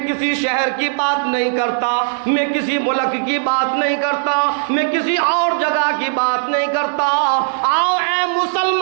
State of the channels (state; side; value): silent; left; 68 dB below the other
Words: किसी शहर की बात नहीं करता, मैं किसी मुल्क की बात नहीं करता, मैं किसी और जगह की बात नहीं करता। आओ ऐ